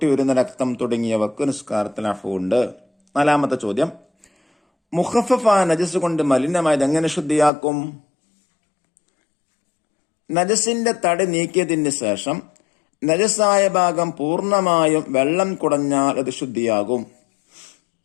വരുന്ന രക്തം തുടങ്ങിയവക്ക് നിസ്കാരത്തിൽ അഫ്വ് ഉണ്ട്. 4ാമത്തെ ചോദ്യം. മുഖഫഫായ നജസ് കൊണ്ട് മലിനമായത് എങ്ങനെ ശുദ്ധിയാക്കും? നജസിന്റെ തടി നീക്കിയതിന് ശേഷം നജസായ ഭാഗം പൂർണ്ണമായും വെള്ളം കുടഞ്ഞാൽ അത് ശുദ്ധിയാകും.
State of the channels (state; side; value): drops out; right; at 7.5 s